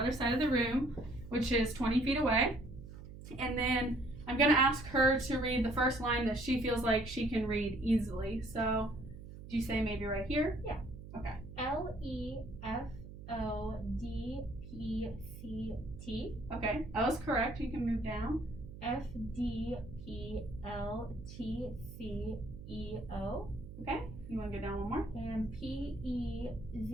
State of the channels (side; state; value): right; noise; hum, 13 dB below the sound